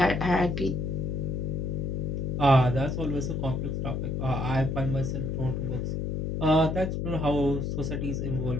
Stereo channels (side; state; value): left; noise; hum, 1 dB below the sound